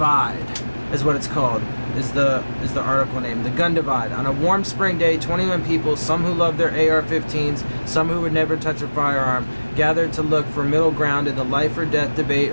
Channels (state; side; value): inverted; both; correlation -1.00